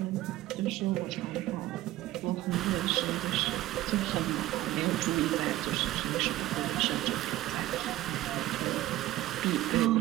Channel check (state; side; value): quieter; left; 15.6 dB